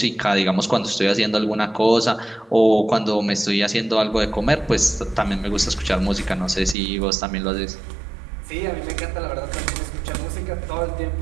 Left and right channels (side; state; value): left; drops out; at 6.8 s